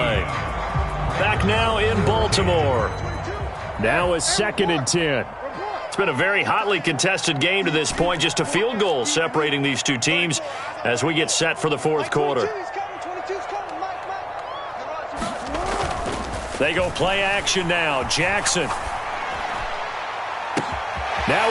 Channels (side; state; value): both; identical; correlation 1.00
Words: Back now in Baltimore. Now a 2nd and 10. It's been a very hotly contested game to this point. Just a field goal separating these two teams as we get set for the 4th quarter. They go play action now. Jackson.